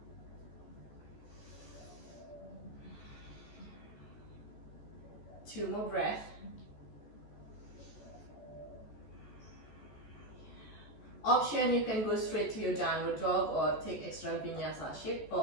Two more breaths. Option, you can go straight to your downward dog or take extra vinyasa. Shift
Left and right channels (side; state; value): right; late; 14 ms